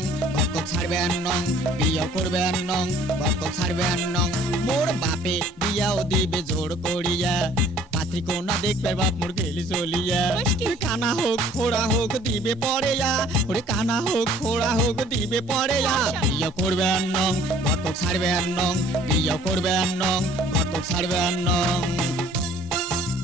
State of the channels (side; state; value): both; normal; correlation 0.55